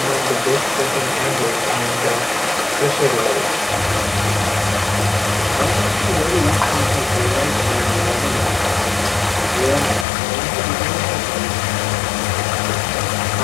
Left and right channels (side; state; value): right; drops out; at 10.1 s